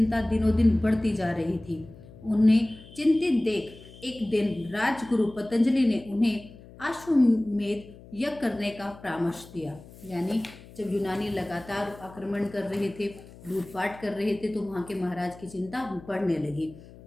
दिनों दिन बढ़ती जा रही थी। उन्हें चिंतित देख एक दिन राजगुरु पतंजलि ने उन्हें अश्वमेध यज्ञ करने का परामर्श दिया। यानी जब यूनानी लगातार आक्रमण कर रहे थे, लूटपाट कर रहे थे, तो वहाँ के महाराज की चिंता बढ़ने लगी।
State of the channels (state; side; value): noise; left; hum, 20 dB below the sound